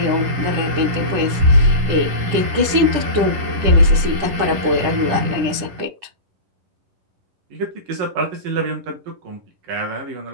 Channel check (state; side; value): late; left; 10 ms